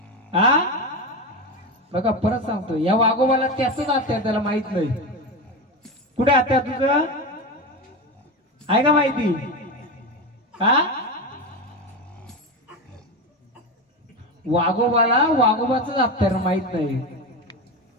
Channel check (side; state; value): both; normal; correlation 0.19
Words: हा? बघा परत सांगतो, या वाघोबाला त्याच हत्यार त्याला माहित नाही. कुठे हत्यार तुझं? आहे का माहिती? हा? वाघोबाला वाघोबाच हत्यार माहित नाही.